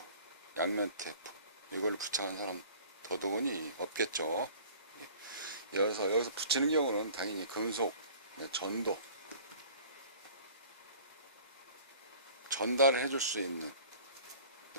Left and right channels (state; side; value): inverted; both; correlation -0.47